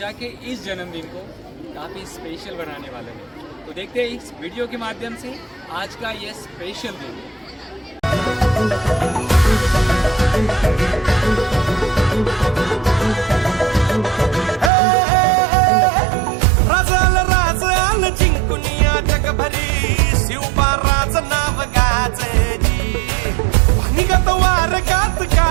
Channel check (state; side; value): drops out; left; at 14.7 s